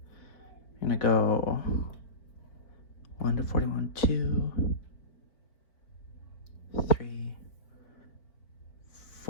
I'm gonna go 1 to 41, 2, 3,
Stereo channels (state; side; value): late; right; 4.5 ms